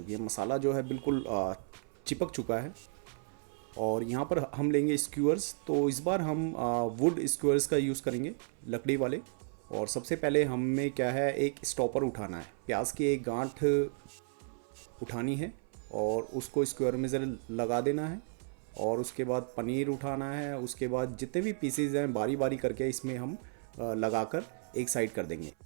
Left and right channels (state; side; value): silent; left; 55 dB below the other